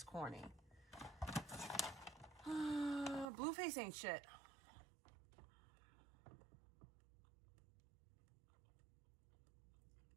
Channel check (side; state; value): left; drops out; at 3.2 s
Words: corny. Blueface ain't shit.